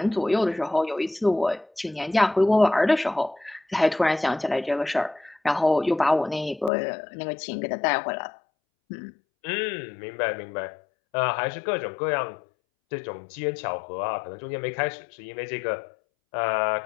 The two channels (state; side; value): drops out; right; at 6.7 s